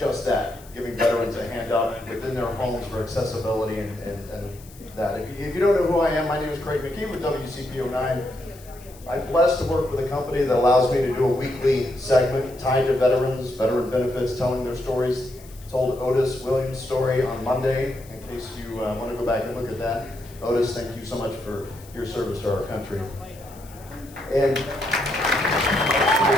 that, giving veterans a hand up within their homes for accessibility and that. If you don't know who I am, my name is Craig McKee with WCPO9. I'm blessed to work with a company that allows me to do a weekly segment tied to veterans, veteran benefits, telling their stories. Told Otis Williams' story on Monday, in case you want to go back and look at that. Otis, thank you so much for your service to our country. And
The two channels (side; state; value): left; noise; hiss, 22 dB below the sound